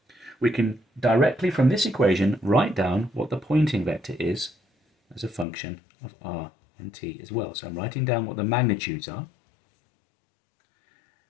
we can directly from this equation write down what the Poynting vector is as a function of r and t as well. So I'm writing down what the magnitudes are.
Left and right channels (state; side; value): drops out; right; at 5.5 s